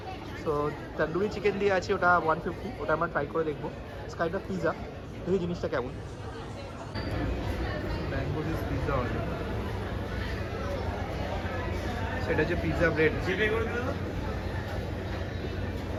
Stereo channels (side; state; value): both; identical; correlation 1.00